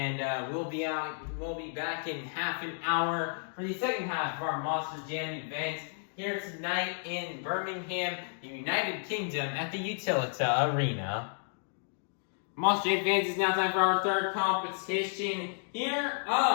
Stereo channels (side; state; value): right; silent; digital silence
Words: we'll be back in half an hour for the second half of our Monster Jam event here tonight in Birmingham, the United Kingdom at the Utilita Arena. Monster Jam fans, it's now time for our third competition here